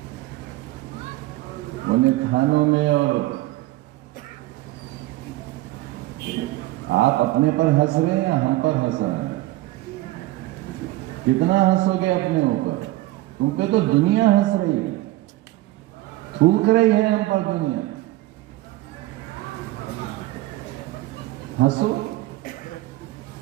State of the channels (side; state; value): left; quieter; 17.7 dB